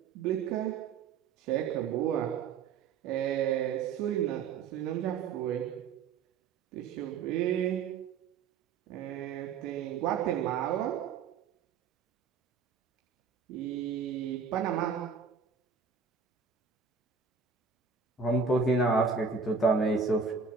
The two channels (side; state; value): left; quieter; 5.7 dB